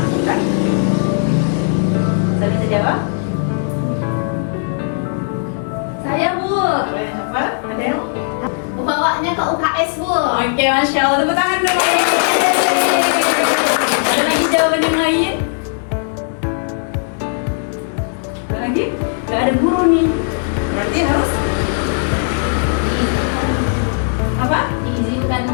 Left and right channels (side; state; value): right; silent; digital silence